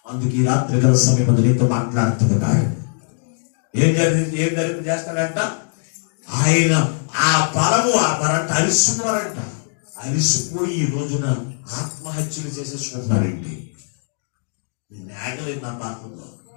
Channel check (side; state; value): right; silent; digital silence